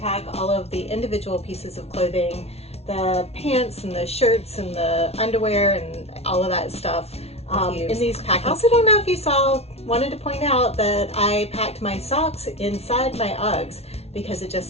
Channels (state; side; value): late; right; 0.30 ms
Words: pack all of the individual pieces of clothing, the pants and the shirts and the underwear and all of that stuff in these packing. I also don't know if you wanted to point out that I packed my socks inside my Uggs because it just